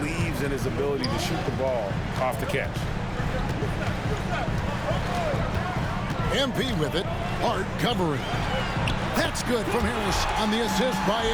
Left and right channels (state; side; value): identical; both; correlation 1.00